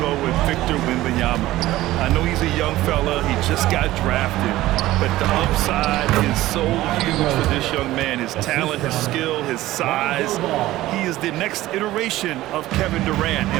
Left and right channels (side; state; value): left; quieter; 16.2 dB